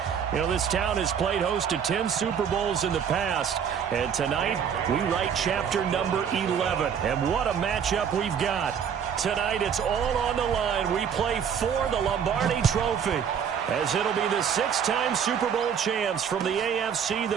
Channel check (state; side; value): quieter; left; 7.7 dB